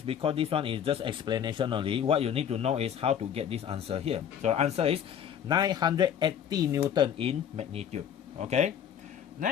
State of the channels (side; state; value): right; quieter; 8.8 dB